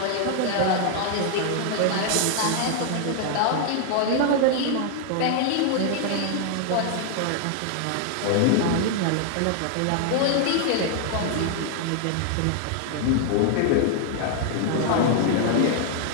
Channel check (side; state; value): both; different; correlation 0.00